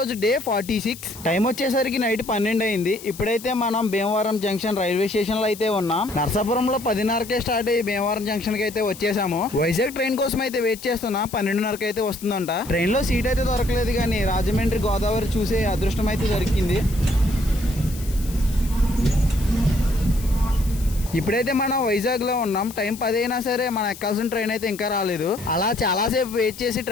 డే 46. టైం వచ్చేసరికి నైట్ 12 అయింది. ఇప్పుడైతే మనం భీమవరం జంక్షన్ రైల్వే స్టేషన్ లో అయితే ఉన్నాం. నర్సాపురంలో 10:30కే స్టార్ట్ అయ్యి భీమవరం జంక్షన్ కి అయితే వచ్చేసాము. వైజాగ్ ట్రైన్ కోసం అయితే వెయిట్ చేస్తున్నా. 12:30కి అయితే వస్తుందంట. ట్రైన్ లో సీట్ అయితే దొరకలేదు, కానీ రాజమండ్రి గోదావరి చూసే అదృష్టం అయితే దొరికింది. ఇప్పుడైతే మనం వైజాగ్ లో ఉన్నాం. టైం 10 అయినా సరే మనం ఎక్కాల్సిన ట్రైన్ అయితే ఇంకా రాలేదు. అలా చాలాసేపు వెయిట్ చేసి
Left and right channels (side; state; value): left; noise; hiss, 16 dB below the sound